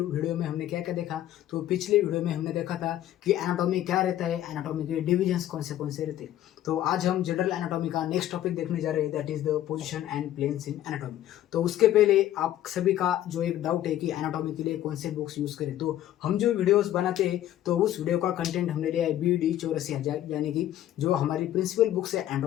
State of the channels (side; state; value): right; quieter; 12.7 dB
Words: में हमने क्या क्या देखा। तो पिछले वीडियो में हमने देखा था कि एनाटॉमी क्या रहता है, एनाटॉमी के डिविजन्स कौन से रहते हैं। तो आज हम जनरल एनाटॉमी का नेक्स्ट टॉपिक देखने जा रहे हैं, that is the position and planes in anatomy. तो उसके पहले आप सभी का जो एक डाउट है कि एनाटॉमी के लिए कौन से बुक्स यूज करें, तो हम जो वीडियोस बनाते हैं तो उस वीडियो का कंटेंट हमने लिया है BD 84,000, यानी कि जो हमारी प्रिंसिपल बुक्स है